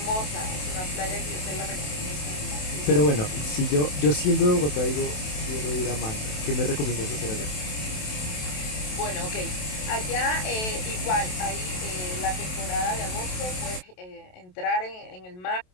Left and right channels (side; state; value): right; late; 27 ms